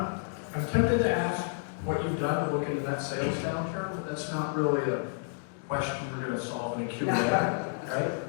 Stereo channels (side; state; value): right; silent; digital silence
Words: tempted to ask what you've done to look into that sales downturn, but that's not really a question we're going to solve in a Q&A, right?